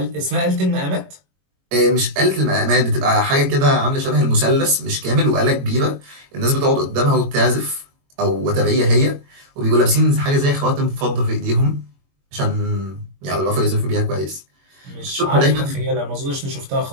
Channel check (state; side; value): late; left; 22 ms